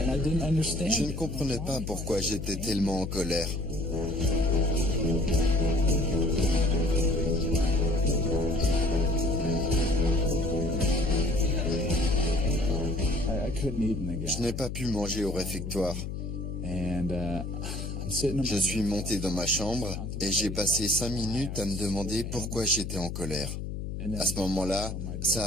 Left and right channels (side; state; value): left; noise; hum, 5 dB below the sound